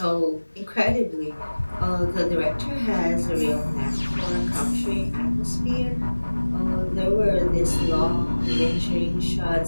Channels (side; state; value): both; inverted; correlation -1.00